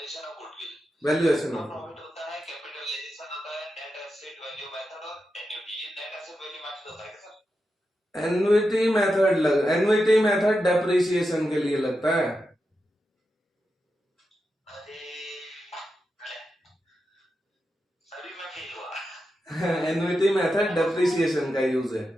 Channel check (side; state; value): both; normal; correlation 0.88